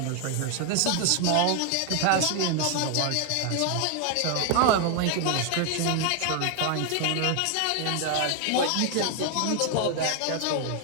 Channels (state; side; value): different; both; correlation 0.01